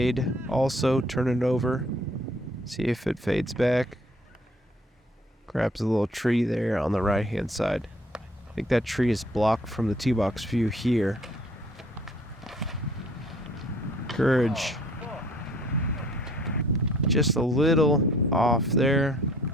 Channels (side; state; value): both; normal; correlation 0.58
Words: also turn it over. See if it fades back. Grabs a little tree there on the right hand side. I think that tree is blocked from the tee box view here. Courage. Just a little off there.